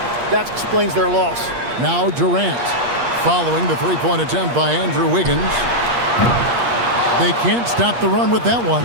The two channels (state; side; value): late; left; 8.4 ms